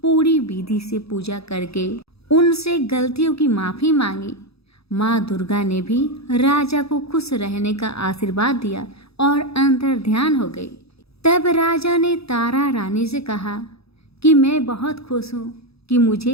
पूरी विधि से पूजा करके उनसे गलतियों की माफी मांगी। माँ दुर्गा ने भी राजा को खुश रहने का आशीर्वाद दिया और अंतर ध्यान हो गई। तब राजा ने तारा रानी से कहा कि मैं बहुत खुश हूँ कि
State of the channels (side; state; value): right; late; 0.77 ms